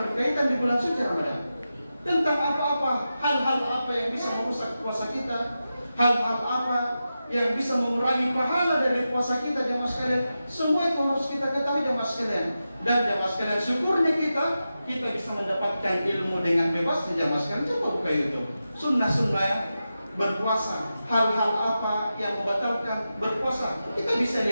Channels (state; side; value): inverted; both; correlation -0.91